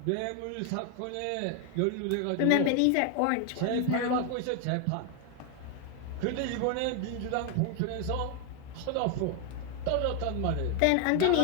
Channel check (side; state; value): both; different; correlation 0.01